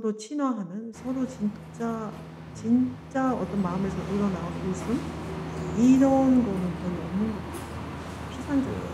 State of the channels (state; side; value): identical; both; correlation 1.00